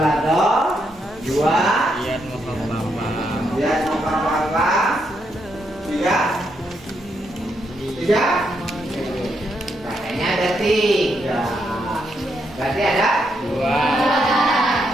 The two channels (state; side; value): normal; both; correlation 0.79